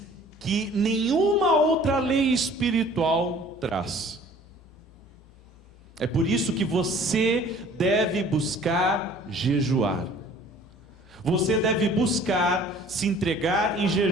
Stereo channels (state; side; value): normal; both; correlation 0.51